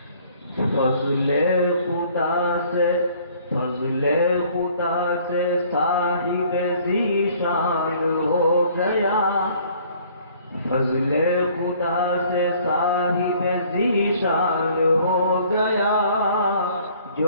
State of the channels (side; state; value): both; inverted; correlation -0.57